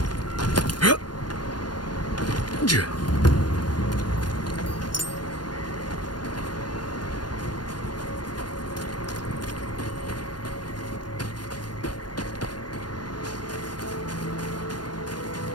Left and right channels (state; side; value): late; right; 0.70 ms